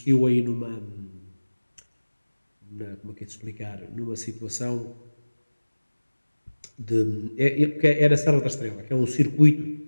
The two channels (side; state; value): both; inverted; correlation -1.00